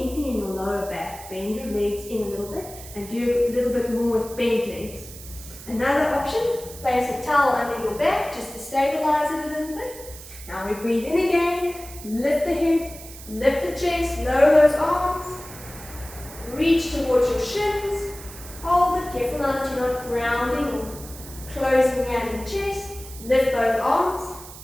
in your lower back, bend your legs in a little bit and do a little bit more with bent legs. Another option, place a towel under your back just to stabilize it a little bit. Now we breathe in again, lift the head, lift the chest, lower those arms, reach towards your shins, hold it, careful now that you're not grounding or closing down the chest, lift both arms,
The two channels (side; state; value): right; noise; hiss, 15 dB below the sound